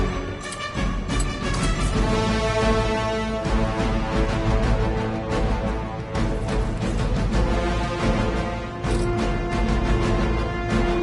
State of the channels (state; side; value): identical; both; correlation 1.00